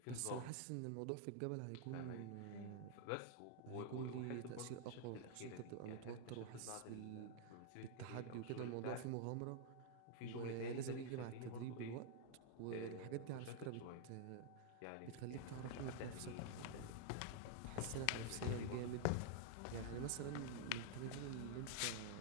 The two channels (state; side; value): different; both; correlation 0.00